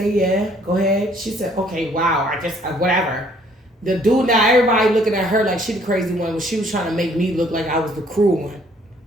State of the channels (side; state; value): both; normal; correlation 0.62